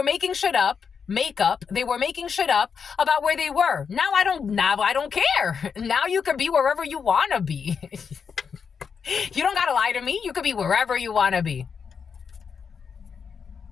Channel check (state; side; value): quieter; right; 6.3 dB